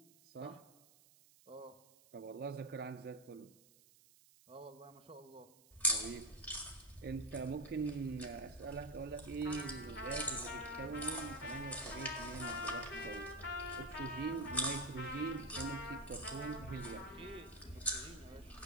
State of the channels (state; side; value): noise; right; hiss, 25 dB below the sound